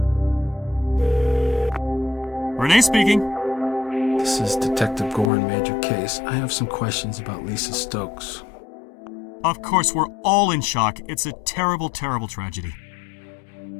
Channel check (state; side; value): drops out; right; at 5.3 s